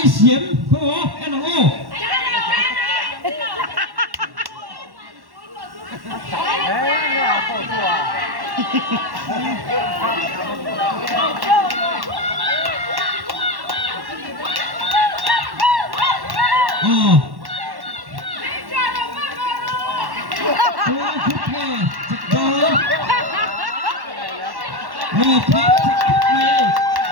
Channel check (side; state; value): left; late; 1.1 ms